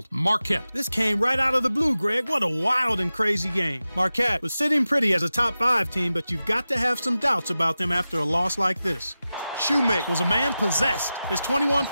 Marquette. This came right out of the blue, Greg. What a wild and crazy game. Marquette was sitting pretty as a top 5 team, but you've got to have some doubts about them after a loss like this. Shoemake was a man possessed. His 21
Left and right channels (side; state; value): both; inverted; correlation -0.94